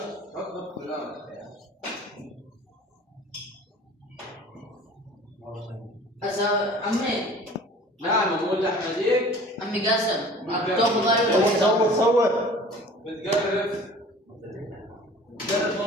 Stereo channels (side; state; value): both; normal; correlation 0.46